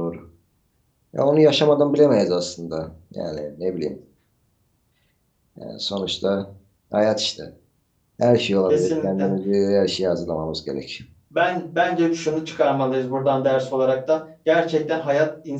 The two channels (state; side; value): identical; both; correlation 1.00